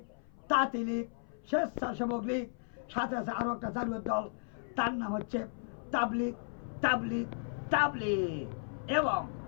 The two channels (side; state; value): right; silent; 55 dB below the other